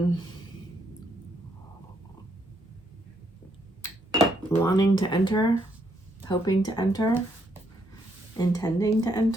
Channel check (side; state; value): both; normal; correlation 0.73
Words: wanting to enter, hoping to enter, intending to